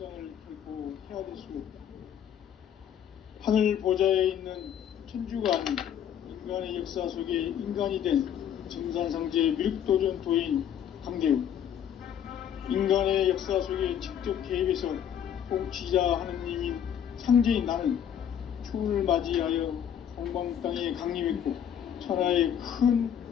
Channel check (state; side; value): quieter; right; 9.3 dB